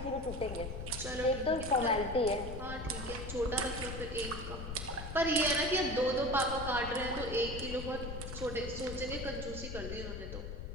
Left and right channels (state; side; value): noise; left; rumble, 7 dB below the sound